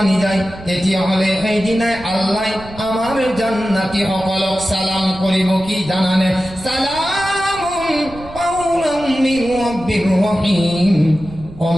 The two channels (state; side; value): noise; right; rumble, 16 dB below the sound